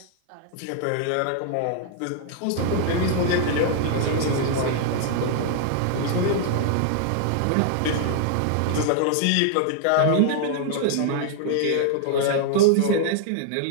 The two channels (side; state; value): both; different; correlation -0.01